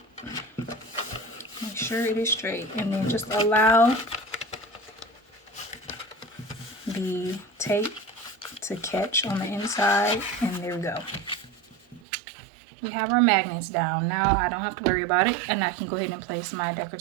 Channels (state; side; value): drops out; left; at 12.0 s